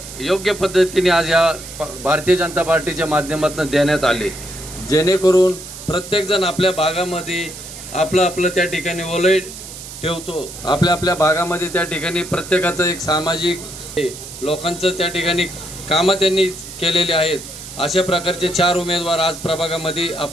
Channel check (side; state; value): right; noise; hiss, 13 dB below the sound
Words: योग्य पद्धतीने आज या भारतीय जनता पार्टीच्या माध्यमातून देण्यात आले, जेणेकरून प्रत्येकजण आपल्या भागामध्ये आपलं त्या ठिकाणी ओलई ठेवतो। आपल्या भागामध्ये त्या ठिकाणी प्रत्येकाचं एक सामाजिक लोकांचं त्या ठिकाणी कामं त्यांनी केलेली आहेत। अशा प्रकारचे 4 उमेदवार आज प्रभागामध्ये